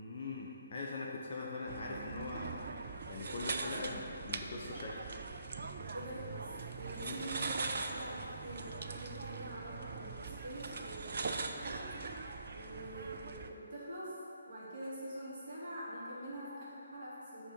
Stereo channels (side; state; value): both; inverted; correlation -0.70